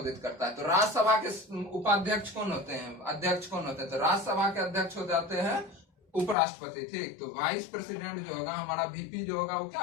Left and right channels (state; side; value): drops out; right; at 6.4 s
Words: करता है? तो राज्यसभा के उपाध्यक्ष कौन होते हैं, अध्यक्ष कौन होते हैं? तो राज्यसभा के अध्यक्ष हो जाते हैं उपराष्ट्रपति। ठीक, तो वाइस प्रेसिडेंट जो होगा हमारा वीपी जो होगा वो क्या